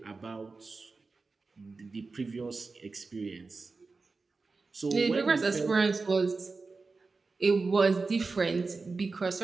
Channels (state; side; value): quieter; left; 4.0 dB